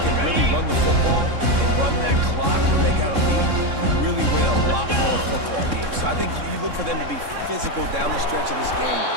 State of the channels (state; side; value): late; left; 3.6 ms